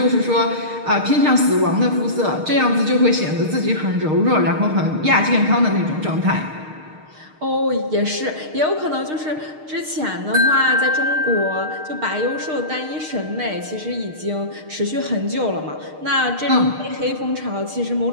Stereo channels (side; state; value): left; late; 6.5 ms